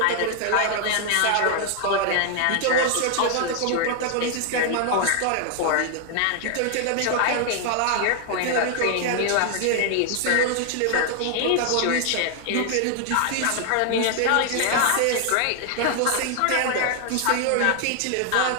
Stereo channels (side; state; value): both; different; correlation 0.00